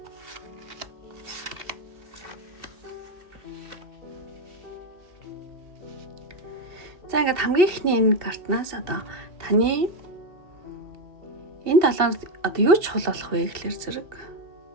За ингээд хамгийн ихний энэ картнаас одоо таны энэ талаар одоо юу чухал болох вэ гэхэлэр зэрэг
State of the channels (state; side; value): late; left; 2.7 ms